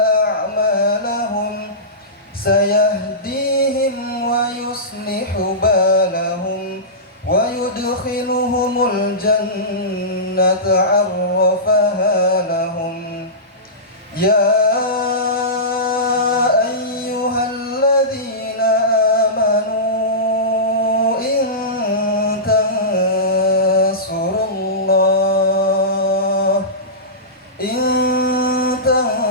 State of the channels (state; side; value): normal; both; correlation -0.18